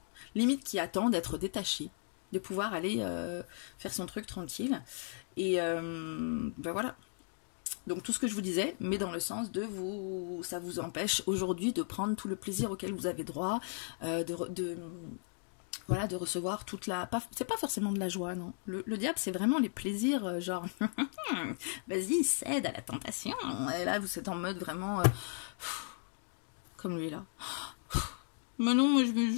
Limite qui attend d'être détachée, de pouvoir aller faire son truc tranquille. Et ben voilà. Donc tout ce que je vous disais, mais dans le sens de vous, ça vous empêche aujourd'hui de prendre tout le plaisir auquel vous avez droit, voilà, de recevoir toute la... C'est pas forcément de la joie, non. Le diable, c'est vraiment les plaisirs, genre, vas-y, cède à la tentation. Et là, vous êtes en mode vraiment... comme lui, là. Mais non, moi, je veux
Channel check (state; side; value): silent; right; 54 dB below the other